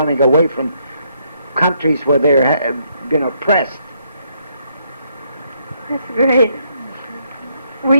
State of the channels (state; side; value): inverted; both; correlation -0.73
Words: away from countries where they're been oppressed. that's great. Were